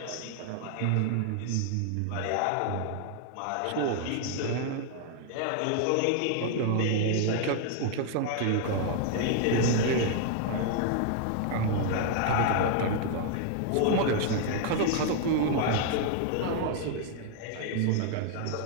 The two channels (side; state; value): both; different; correlation 0.00